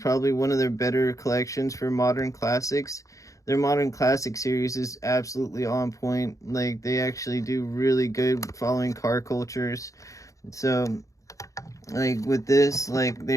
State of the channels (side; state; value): right; late; 0.16 ms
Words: one of their better collections for modern classics. Their modern classic series is absolutely on point. Like, they actually do really good following car cultures. So, like, with this, like,